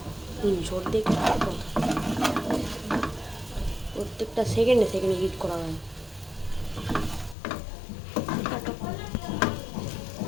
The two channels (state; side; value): drops out; right; at 7.4 s